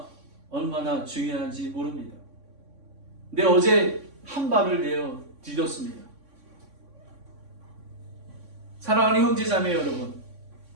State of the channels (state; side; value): late; left; 3.6 ms